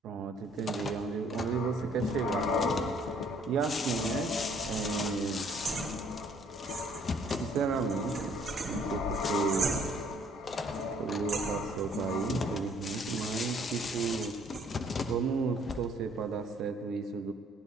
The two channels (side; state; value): both; normal; correlation 0.61